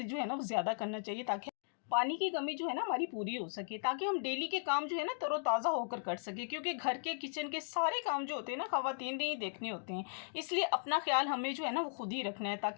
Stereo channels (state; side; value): silent; right; digital silence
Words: जो है ना वो ज़्यादा करना चाहिए ताकि पानी की कमी जो है ना हमारी पूरी हो सके, ताकि हम डेली के काम जो है ना तरोताज़ा होकर कर सके। क्योंकि घर के किचन के सारे काम जो होते हैं ना ख़वातीन ने ही देखने होते हैं, इसलिए अपना ख्याल हमें जो है ना वो खुद ही रखना है